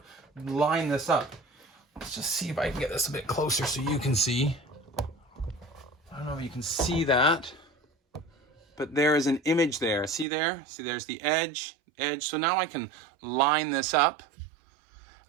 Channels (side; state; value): left; drops out; at 10.2 s